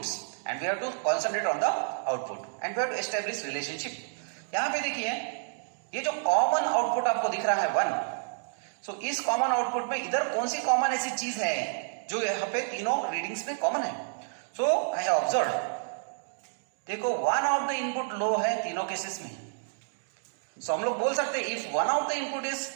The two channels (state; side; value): silent; left; digital silence